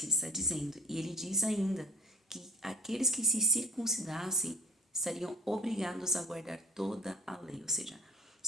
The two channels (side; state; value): both; normal; correlation 0.51